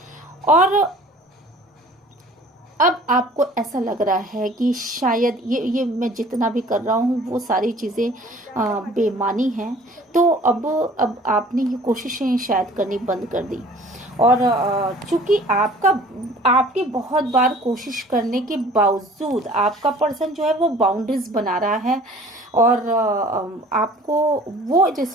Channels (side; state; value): both; normal; correlation 0.49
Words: और अब आपको ऐसा लग रहा है कि शायद ये मैं जितना भी कर रहा हूँ वो सारी चीज़ें बेमानी हैं, तो अब आपने ये कोशिशें शायद करनी बंद कर दी। और चूंकि आपके बहुत बार कोशिश करने के बावजूद आपका पर्सन जो है वो बाउंड्रीज बना रहा है और आपको वो